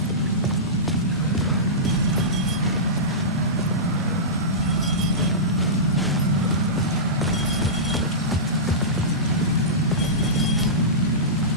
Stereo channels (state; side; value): normal; both; correlation -0.18